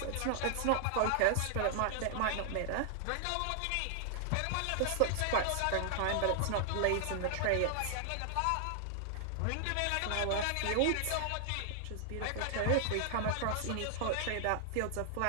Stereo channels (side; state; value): both; different; correlation 0.00